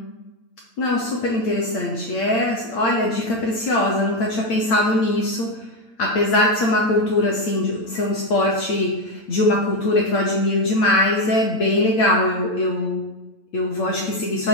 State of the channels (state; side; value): late; right; 8.8 ms